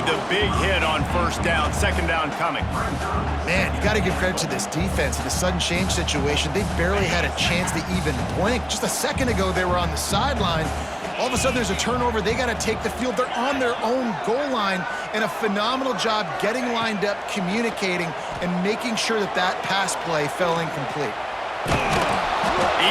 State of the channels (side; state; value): both; identical; correlation 1.00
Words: big hit on first down. Second down coming. Man, you got to give credit to this defense. In the sudden change situation, they barely had a chance to even blink. Just a second ago, they were on the sideline. All of a sudden, there's a turnover. They got to take the field. They're on their own goal line, and a phenomenal job getting lined up, communicating, and making sure that that pass play fell incomplete.